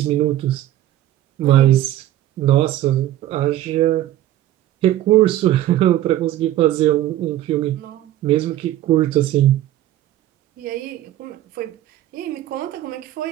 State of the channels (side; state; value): left; quieter; 13.6 dB